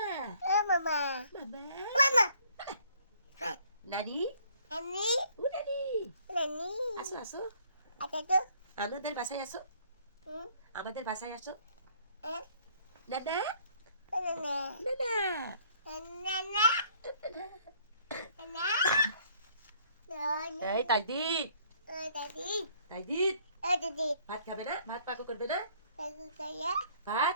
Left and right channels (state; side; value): inverted; both; correlation -0.60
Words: মামা মামা নানি ও নানি আসো আসো আমাদের বাসায় আসো আমাদের বাসায় আসো নানা নানা এই তাইদিদ তাইদিদ ভাত খাবে না ভাত পাকো করবে না